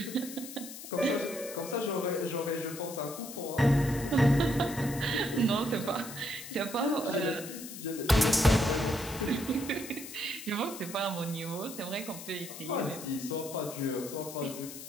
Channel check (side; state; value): left; noise; hiss, 12 dB below the sound